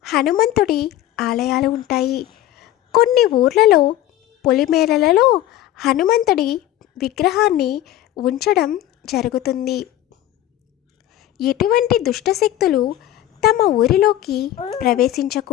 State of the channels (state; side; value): quieter; right; 13.3 dB